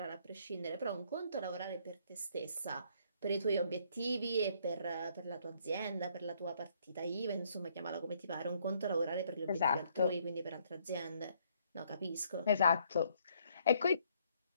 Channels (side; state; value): both; inverted; correlation -0.67